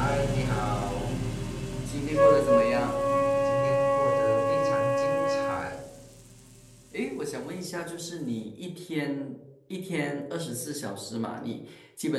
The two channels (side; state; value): both; identical; correlation 1.00